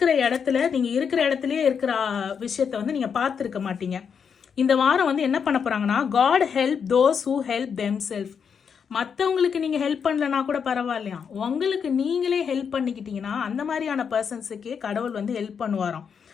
இடத்துல நீங்கள் இருக்கிற இடத்துலயே இருக்கிற விஷயத்த வந்து நீங்கள் பார்த்துருக்க மாட்டீங்க. இந்த வாரம் வந்து என்ன பண்ண போறாங்கன்னா, God help those who help them self. மற்றவங்களுக்கு நீங்கள் ஹெல்ப் பண்ணலனா கூட பரவாயில்லையா, உங்களுக்கு நீங்களே ஹெல்ப் பண்ணிக்கிட்டீங்கன்னா அந்த மாதிரியான பர்சன்ஸுக்கே கடவுள் வந்து ஹெல்ப் பண்ணுவாராம்.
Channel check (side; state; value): right; quieter; 6.8 dB